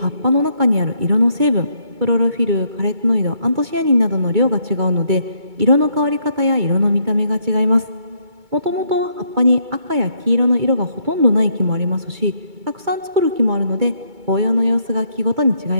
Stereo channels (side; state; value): left; late; 2.2 ms